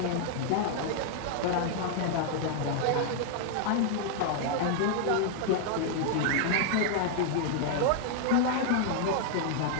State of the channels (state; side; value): different; both; correlation 0.00